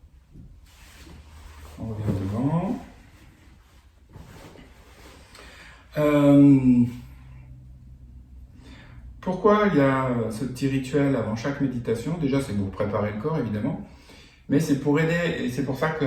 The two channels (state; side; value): identical; both; correlation 1.00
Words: On revient devant. Pourquoi il y a ce petit rituel avant chaque méditation? Déjà, c'est pour préparer le corps, évidemment. Mais c'est pour aider, et c'est pour ça